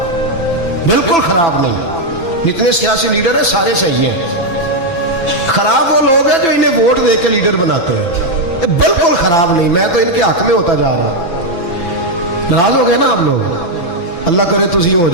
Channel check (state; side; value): late; right; 6.0 ms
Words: बिल्कुल खराब नहीं। जितने सियासी लीडर हैं सारे सही हैं। खराब वो लोग हैं जो इन्हें वोट दे के लीडर बनाते हैं, बिल्कुल खराब नहीं। मैं तो इनके हक में होता जा रहा। नाराज हो गए ना आप लोग? अल्लाह करे तुसी हो